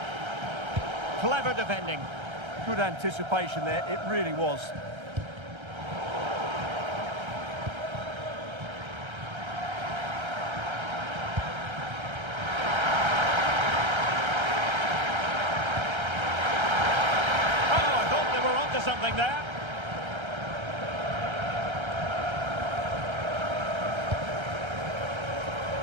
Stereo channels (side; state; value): left; late; 1.3 ms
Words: Clever defending. Good anticipation there, it really was. Something there.